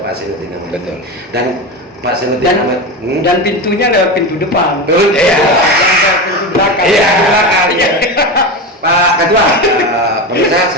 Zainuddin Amali. Betul. Dan Pak Zainuddin Amali Dan pintunya lewat pintu depan. Iya. Lewat pintu belakang. Iya. Pintu belakang. Iya. Pak Ketua, pemirsa,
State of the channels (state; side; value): normal; both; correlation 0.21